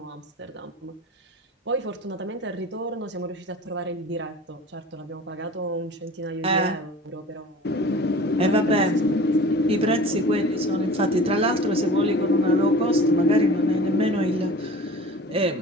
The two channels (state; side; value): normal; both; correlation 0.41